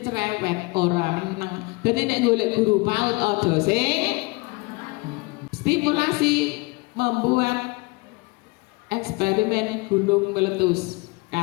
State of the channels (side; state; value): right; quieter; 26.4 dB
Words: cerewet, orang menang. Jadi nek golek guru PAUD ojo sing stimulasi membuat eksperimen gunung meletus